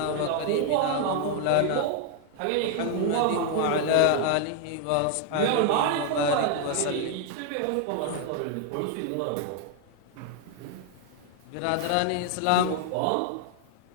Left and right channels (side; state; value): both; different; correlation 0.00